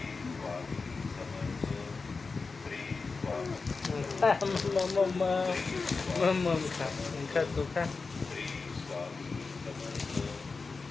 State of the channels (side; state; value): right; quieter; 4.3 dB